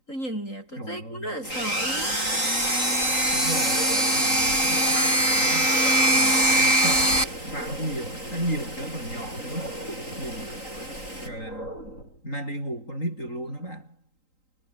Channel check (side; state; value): right; late; 3.9 ms